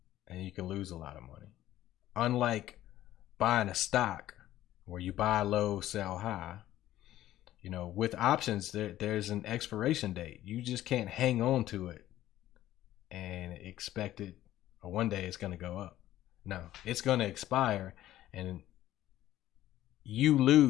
and you can lose a lot of money. Unlike buying a stock where you buy low, sell high, you know, with options, there's an expiration date. You just can't hang on to it and expect it, or one day it's going to go up. No, it's going to expire, and you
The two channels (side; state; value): right; quieter; 13.8 dB